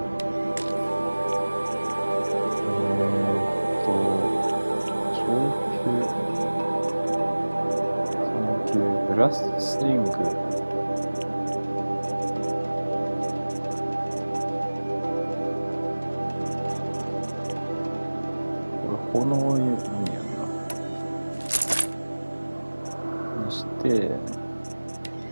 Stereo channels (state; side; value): inverted; both; correlation -1.00